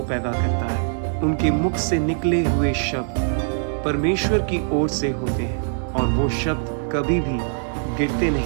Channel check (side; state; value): left; silent; digital silence